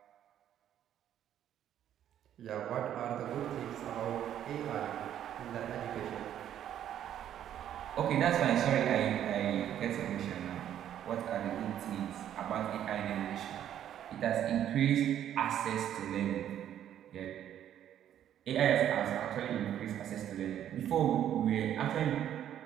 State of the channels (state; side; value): quieter; left; 10.6 dB